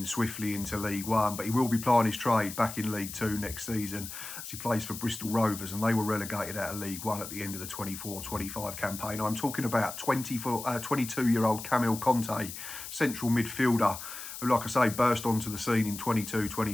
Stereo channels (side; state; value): left; noise; hiss, 10 dB below the sound